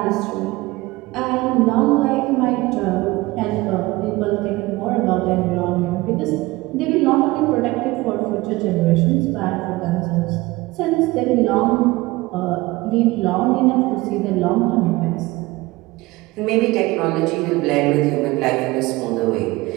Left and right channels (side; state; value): left; quieter; 20.7 dB